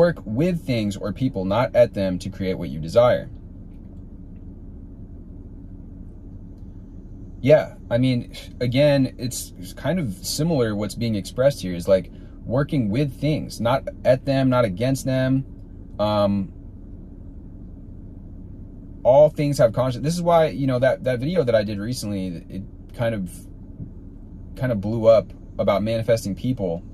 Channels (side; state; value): both; identical; correlation 1.00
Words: with things or people, not at them, to create what you desire. Yeah, I mean, again, it's kind of similar. What's being expressed here is like working with things, not at them, not against them. All things have conscience. This is why, you know, that video that I did recently, it kind of blew up about manifesting people.